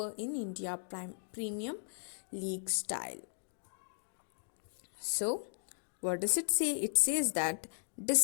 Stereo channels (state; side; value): silent; right; digital silence